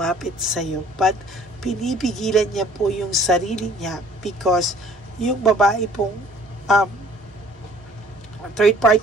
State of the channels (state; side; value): normal; both; correlation 0.54